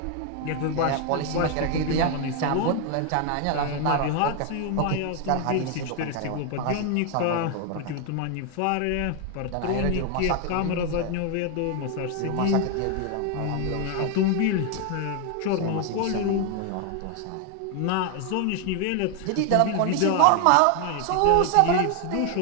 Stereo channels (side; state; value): both; different; correlation 0.01